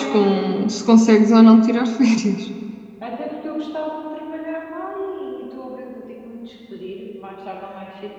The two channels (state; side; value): identical; both; correlation 1.00